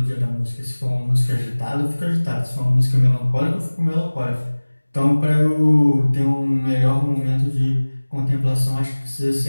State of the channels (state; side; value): inverted; both; correlation -1.00